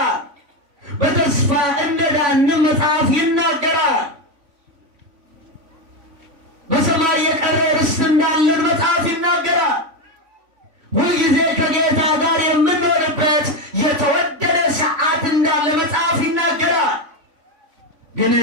በተስፋ እንደዳንም መጽሐፍ ይናገራል። በሰማይ የቀረ ርስት እንዳለን መጽሐፍ ይናገራል። ሁልጊዜ ከጌታ ጋር የምንኖርበት የተወደደ ሰዓት እንዳለ መጽሐፍ ይናገራል። ግን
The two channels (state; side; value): late; left; 3.5 ms